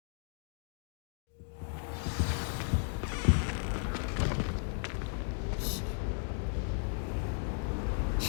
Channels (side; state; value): right; silent; 54 dB below the other